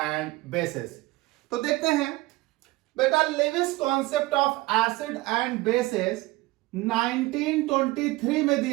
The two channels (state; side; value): quieter; left; 20.0 dB